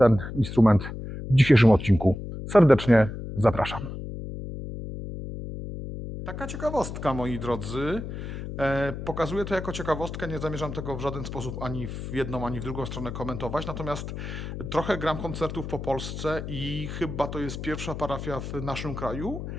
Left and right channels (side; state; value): left; noise; hum, 7 dB below the sound